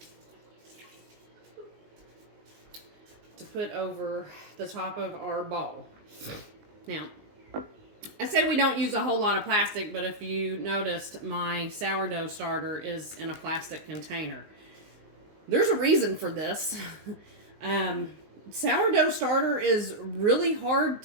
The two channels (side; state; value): left; late; 19 ms